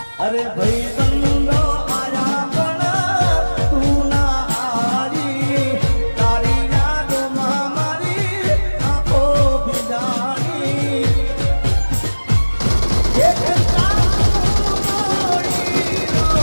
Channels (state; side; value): inverted; both; correlation -1.00